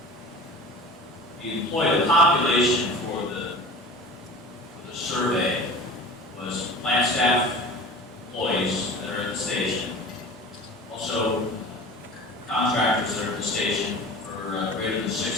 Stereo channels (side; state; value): both; normal; correlation 0.38